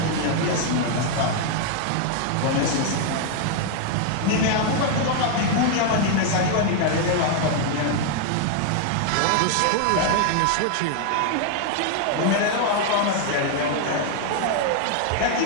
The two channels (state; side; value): different; both; correlation 0.00